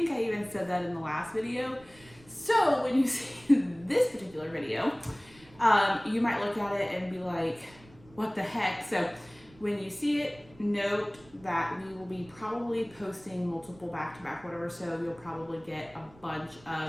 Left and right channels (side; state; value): right; noise; rumble, 25 dB below the sound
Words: I even said that in the last video. So when you see this particular video, you might look at it and be like, what the heck? So when you see it, note that we will be probably posting multiple back to back whatever, so you'll probably get a bunch